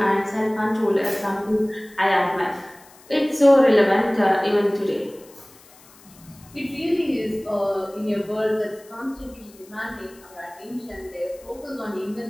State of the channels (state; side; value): noise; left; hiss, 25 dB below the sound